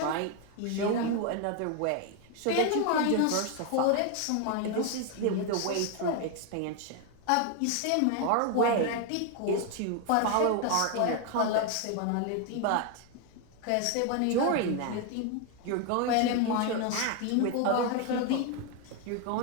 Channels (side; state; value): both; different; correlation 0.01